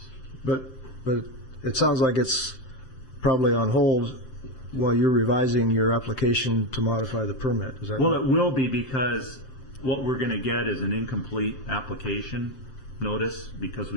But it sounds like it's probably on hold while you're revising your application to modify the permit. Is that Well, right? it will be, because what we're going to get is an incomplete application notice, because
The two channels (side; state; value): right; late; 7.7 ms